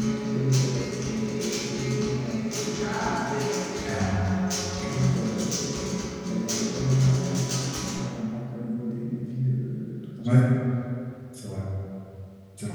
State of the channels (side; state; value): both; identical; correlation 1.00